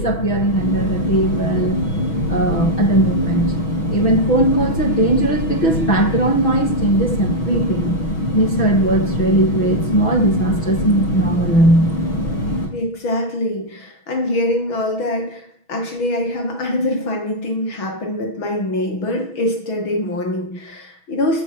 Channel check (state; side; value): late; right; 6.2 ms